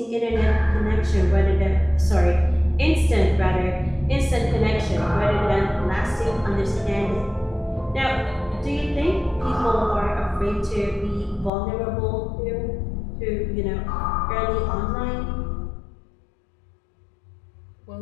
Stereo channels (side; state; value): right; drops out; at 11.5 s